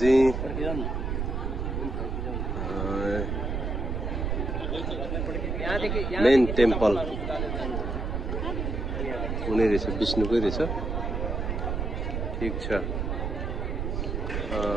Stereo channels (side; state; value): right; noise; rumble, 2 dB below the sound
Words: मेन टेम्पल हुने रहेछ, विष्णुकै रहेछ। ठिक छ।